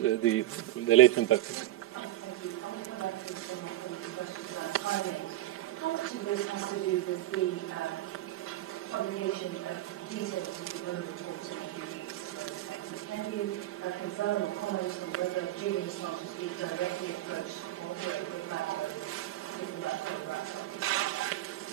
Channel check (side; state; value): left; quieter; 15.0 dB